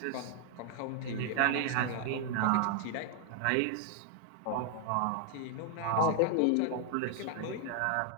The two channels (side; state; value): both; different; correlation 0.00